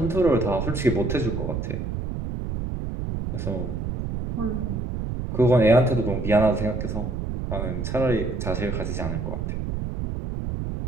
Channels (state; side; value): noise; right; rumble, 4 dB below the sound